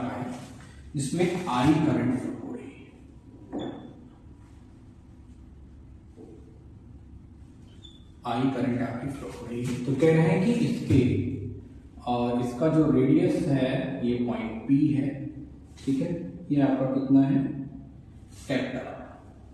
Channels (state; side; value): identical; both; correlation 1.00